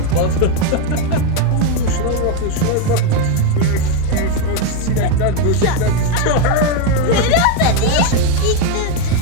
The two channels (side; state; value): both; different; correlation 0.02